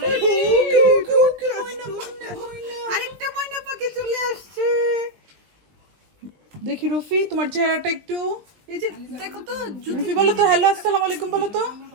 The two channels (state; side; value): late; left; 20 ms